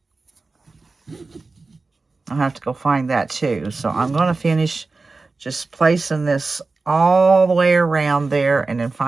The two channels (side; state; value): left; quieter; 3.8 dB